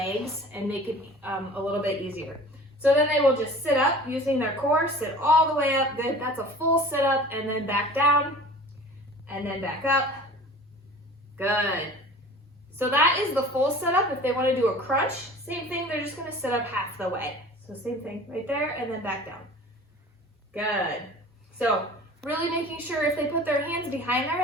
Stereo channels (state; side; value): normal; both; correlation 0.43